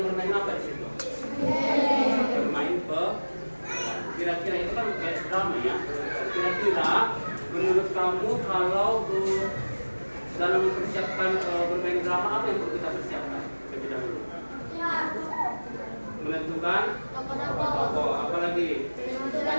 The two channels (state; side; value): inverted; both; correlation -1.00